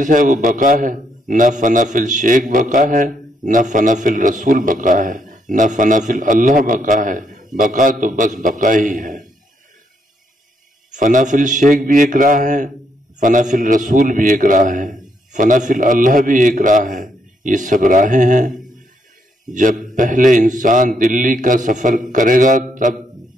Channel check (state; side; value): normal; both; correlation 0.75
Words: ہے وہ بقا ہے۔ نہ فنا فی الشیک بقا ہے، نہ فنا فی الرسول بقا ہے، نہ فنا فی اللہ بقا ہے۔ بقا تو بس بقا ہی ہے۔ فنا فی الشیک بھی ایک راہ ہے، فنا فی الرسول بھی ایک راہ ہے، فنا فی اللہ بھی ایک راہ ہے۔ یہ سب راہیں ہیں۔ جب پہلے انسان دلی کا سفر کرے گا تب